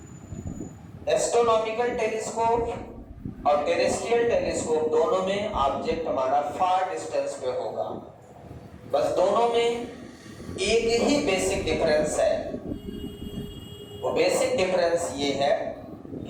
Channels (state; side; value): identical; both; correlation 1.00